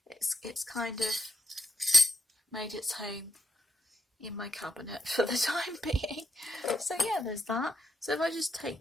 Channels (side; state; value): both; normal; correlation 0.83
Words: it's kind of made its home in my cabinet for the time being. So yeah, there's that. So if I just